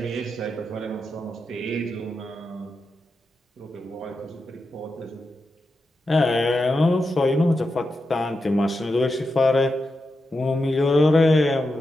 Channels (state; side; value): normal; both; correlation 0.88